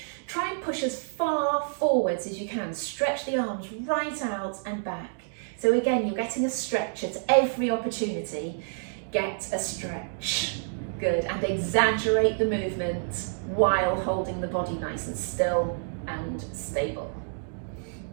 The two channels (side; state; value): left; silent; digital silence